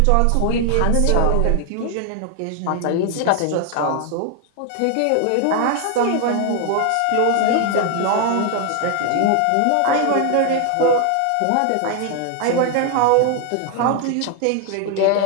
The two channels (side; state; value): both; different; correlation 0.00